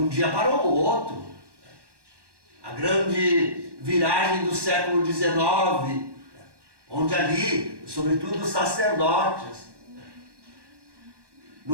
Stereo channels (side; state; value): left; late; 1.1 ms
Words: dia para o outro. A grande viragem do século XIX, onde ali, sobretudo os sacerdotes,